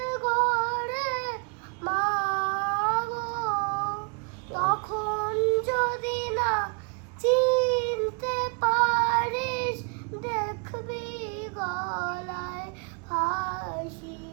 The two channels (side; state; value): left; quieter; 37.3 dB